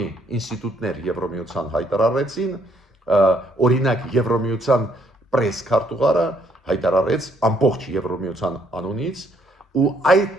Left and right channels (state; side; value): normal; both; correlation 0.69